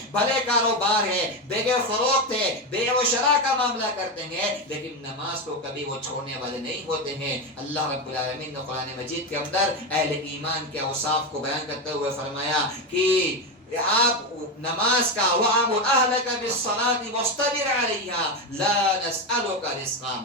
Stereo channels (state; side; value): normal; both; correlation 0.13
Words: بھلے کاروبار ہے، بیع فروخت ہے، بیع و شراء کا معاملہ کرتے ہیں، لیکن نماز کو کبھی وہ چھوڑنے والے نہیں ہوتے ہیں. اللہ رب العالمین نے قرآن مجید کے اندر اہل ایمان کے اوصاف کو بیان کرتے ہوئے فرمایا کہ آپ نماز کا وَأَمُرْ أَهْلَكَ بِالصَّلَاةِ وَاصْطَبِرْ عَلَيْهَا لَا نَسْأَلُكَ رِزْقًا.